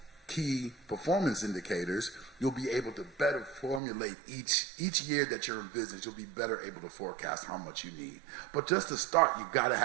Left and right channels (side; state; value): left; drops out; at 3.8 s